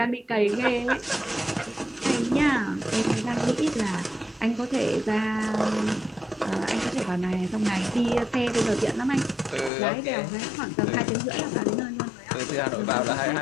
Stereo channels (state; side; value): drops out; right; at 9.7 s